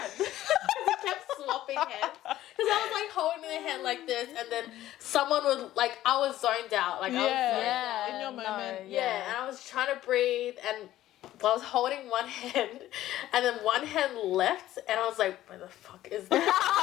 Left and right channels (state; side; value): quieter; right; 14.0 dB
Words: We kept swapping hands. Because I was like holding their hand like this, and then someone would, like, I was zoned out. Like, I was zoned out. In your moment. And I was trying to breathe, and I was holding one hand, and then one hand left, and I was like, where the fuck is that?